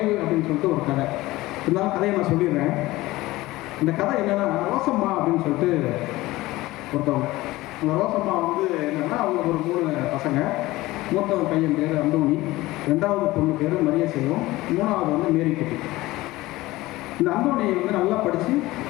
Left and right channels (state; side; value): quieter; right; 18.6 dB